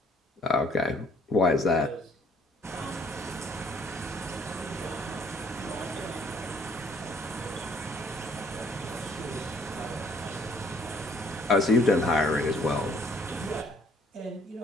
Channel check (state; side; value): normal; both; correlation 0.62